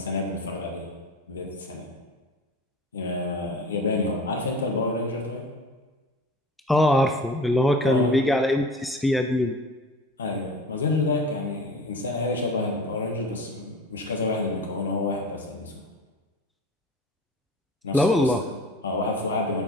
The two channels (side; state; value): both; normal; correlation 0.38